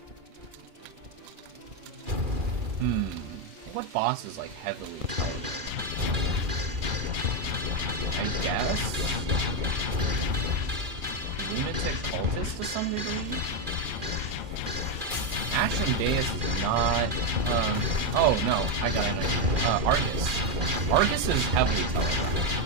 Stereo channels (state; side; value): late; left; 2.4 ms